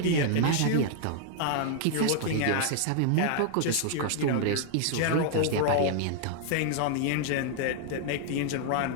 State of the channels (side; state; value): both; different; correlation 0.00